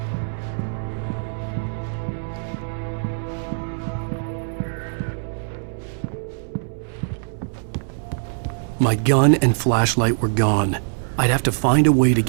My gun and flashlight were gone. I'd have to find a way to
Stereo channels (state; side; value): silent; left; 64 dB below the other